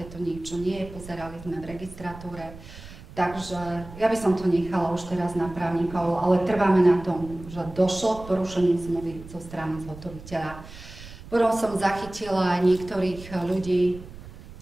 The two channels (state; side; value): noise; right; rumble, 16 dB below the sound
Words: niečo nie je, pozerali sme v registratúre, takže ja by som to nechala už teraz na právnikov, ale trváme na tom, že došlo k porušeniu zmluvy zo strany zhotoviteľa. Potom som zachytila aj niektorých ľudí,